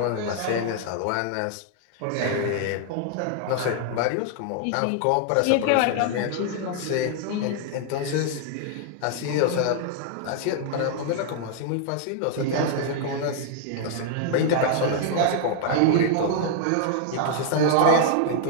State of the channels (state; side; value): different; both; correlation -0.01